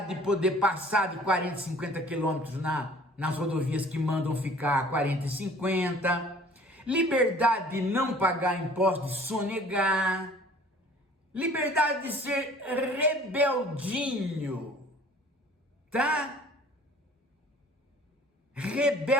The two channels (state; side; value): normal; both; correlation 0.50